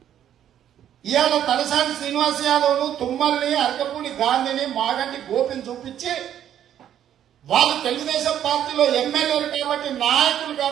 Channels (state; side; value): quieter; left; 10.4 dB